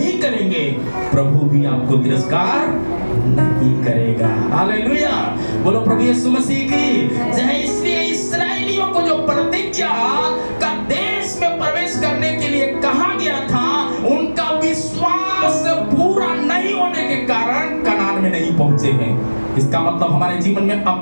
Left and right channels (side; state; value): both; inverted; correlation -1.00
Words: करेंगे, प्रभु भी आपको तिरस्कार नहीं करेगा। हालेलुया, बोलो प्रभु यीशु मसीह की। इसलिए इस्राएलियों को जो प्रतिज्ञा का देश में प्रवेश करने के लिए कहा गया था, उनका विश्वास पूरा नहीं होने के कारण कनान में नहीं पहुंचे हैं। इसका मतलब हमारे जीवन में